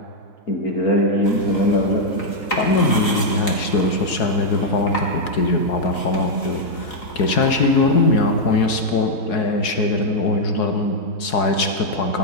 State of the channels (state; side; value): late; right; 3.9 ms